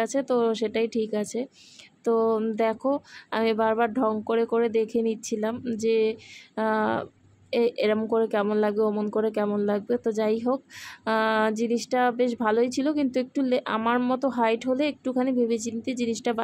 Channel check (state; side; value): identical; both; correlation 1.00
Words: আছে তো সেটাই ঠিক আছে। তো দেখো আমি বারবার ঢং করে করে দেখে নিচ্ছিলাম যে এরম করে কেমন লাগবে, অমন করে কেমন লাগবে। তো যাই হোক, জিনিসটা বেশ ভালোই ছিল, কিন্তু একটু আমার মতো হাইট হলে একটুখানি ভেবেচিন্তে জিনিসটা